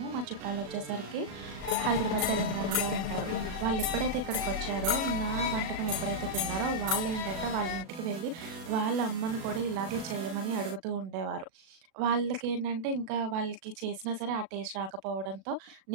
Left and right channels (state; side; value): late; left; 37 ms